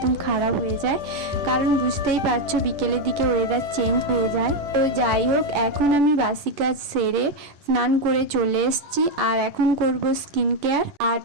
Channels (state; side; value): late; left; 10 ms